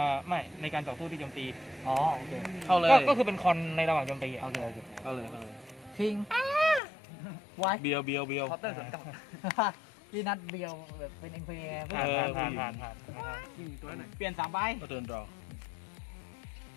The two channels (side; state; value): right; drops out; at 6.8 s